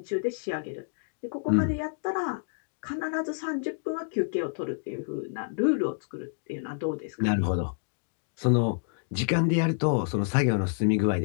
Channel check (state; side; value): silent; right; digital silence